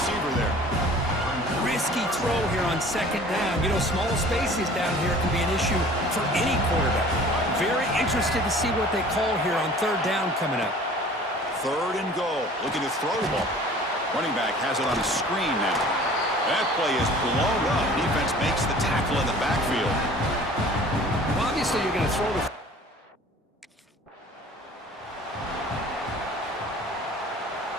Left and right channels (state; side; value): normal; both; correlation 0.47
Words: there. Risky throw here on second down. You know, small spaces down here can be an issue for any quarterback. Very interested to see what they call here on third down coming up. Third and goal. Looking to throw the ball. Running back has it on a screen now. That play is blown up. Defense makes the tackle in the backfield. Well, obviously, you're going to throw the...